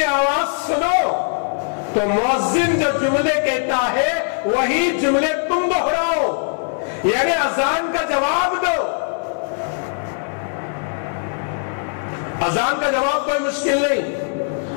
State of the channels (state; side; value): silent; right; digital silence